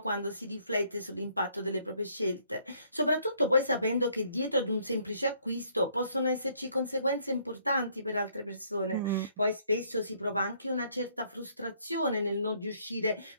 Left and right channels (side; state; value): both; inverted; correlation -0.66